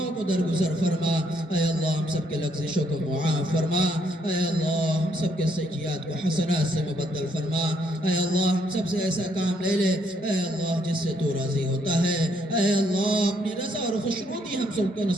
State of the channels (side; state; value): both; normal; correlation 0.72